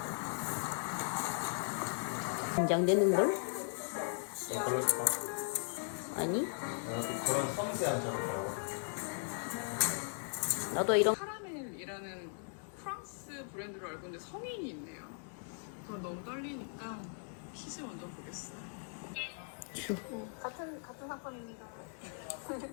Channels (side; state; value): right; silent; 52 dB below the other